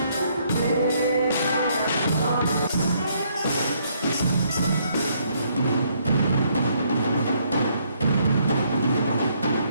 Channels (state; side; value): inverted; both; correlation -0.70